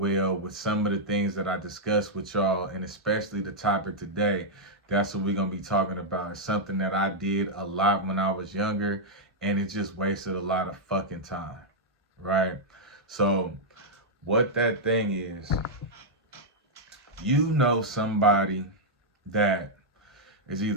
with some of the things that I discussed with y'all, and especially the topic today. That's what we're going to be talking about. It's something that I did a lot when I was younger, and it just wasted a lot of fucking time, right? So what that thing is, you know somebody that is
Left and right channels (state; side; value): normal; both; correlation -0.05